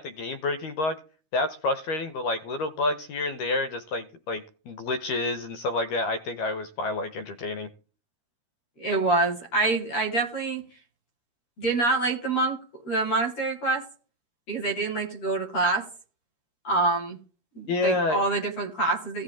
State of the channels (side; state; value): right; late; 13 ms